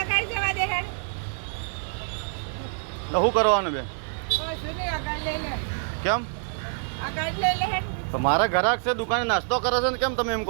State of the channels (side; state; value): left; silent; 58 dB below the other